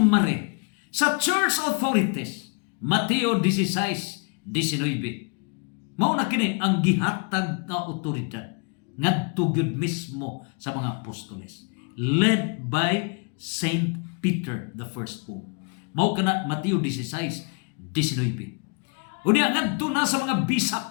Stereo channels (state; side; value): quieter; right; 36.5 dB